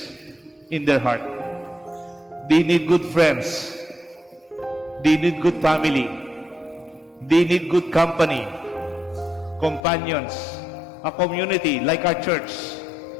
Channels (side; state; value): right; drops out; at 9.8 s